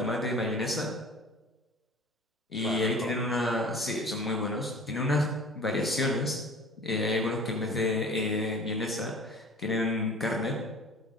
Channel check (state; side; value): normal; both; correlation 0.43